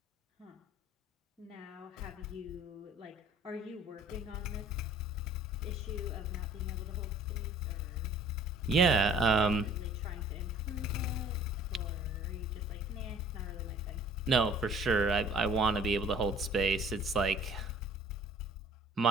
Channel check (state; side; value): normal; both; correlation 0.52